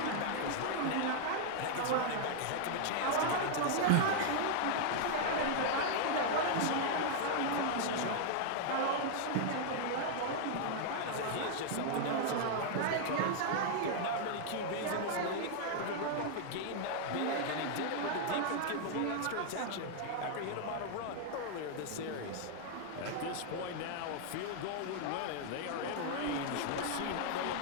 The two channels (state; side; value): different; both; correlation 0.00